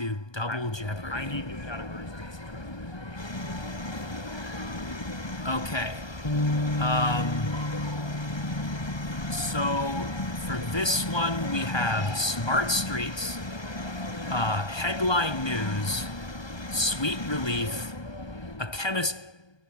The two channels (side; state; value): right; late; 1.3 ms